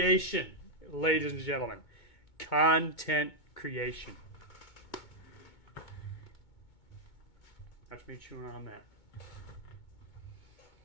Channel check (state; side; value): late; right; 2.2 ms